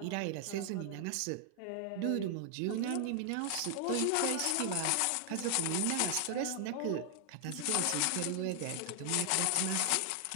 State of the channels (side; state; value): both; different; correlation 0.00